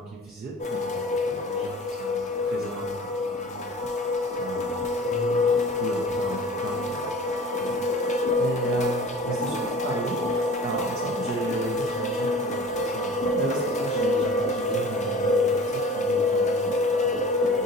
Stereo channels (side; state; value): both; normal; correlation 0.42